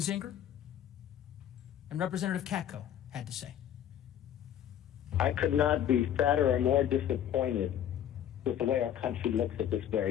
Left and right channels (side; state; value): right; quieter; 10.3 dB